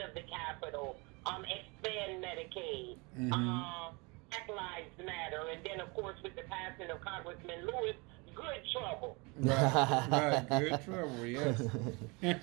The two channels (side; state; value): left; quieter; 28.0 dB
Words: of the Capitol, expand Medicaid, Black Lives Matter, and then, of course, with the passing of Congressman Lewis, good trouble. Right. Good trouble, yes.